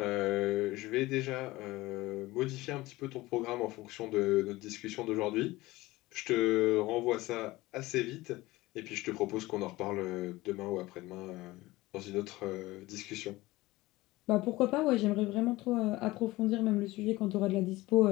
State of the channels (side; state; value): right; quieter; 19.3 dB